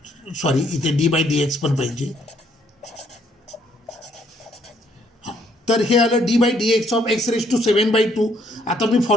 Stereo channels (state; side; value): normal; both; correlation 0.68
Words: सॉरी, इथे डी बाय डी एक्स पण पाहिजे. तर हे आलं d by D x of x raise to 7/2. आता मी